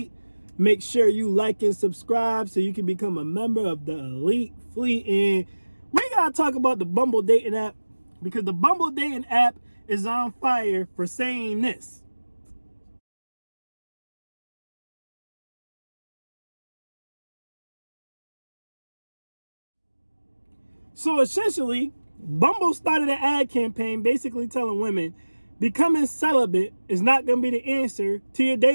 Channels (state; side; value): inverted; both; correlation -1.00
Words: Make sure you like and subscribe so you can become a member of the Elite Fleet. And we gotta talk about the Bumble dating app, because the Bumble dating app is on fire for saying this. So essentially, Bumble started an ad campaign basically telling women becoming celibate is not going to be the answer to your